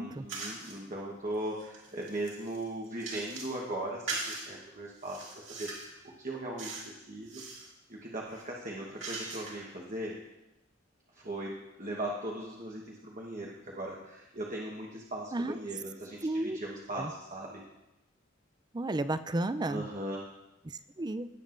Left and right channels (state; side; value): normal; both; correlation 0.52